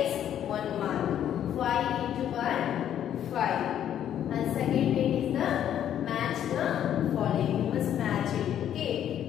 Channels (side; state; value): right; quieter; 10.3 dB